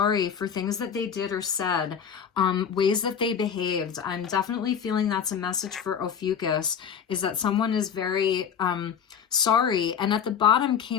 for things that they did or said, ways that they behaved. I'm definitely feeling that's a message for Ophiuchus, is that someone is very sorry. And at the bottom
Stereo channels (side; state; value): right; quieter; 7.6 dB